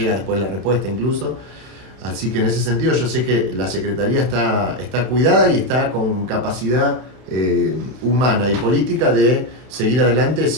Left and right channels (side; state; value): left; late; 31 ms